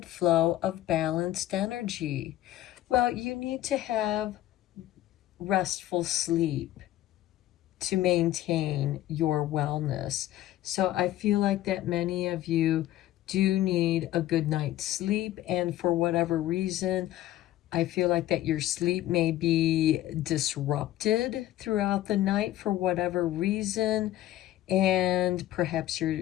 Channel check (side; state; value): right; quieter; 14.1 dB